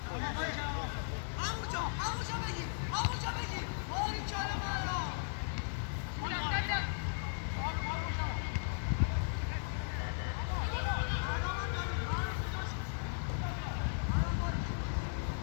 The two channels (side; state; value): right; silent; digital silence